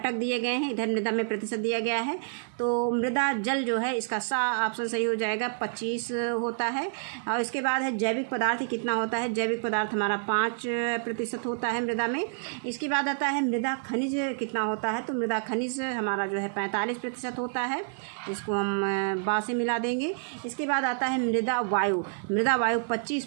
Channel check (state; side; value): silent; left; 59 dB below the other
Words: दिए गए हैं, इधर मृदा में प्रतिशत दिया गया है। तो मृदा जल जो है इसका सा ऑप्शन सही हो जाएगा, 25 होता है। और इसके बाद है जैविक पदार्थ कितना होता है। जैविक पदार्थ हमारा 5% होता है मृदा में। इसके बाद आता है मृदा खनिज कितना होता है। तो मृदा खनिज हमारा जो है 45% होता है, इसको हम बा से मिला देंगे। इसके बाद आता है मृदा वायु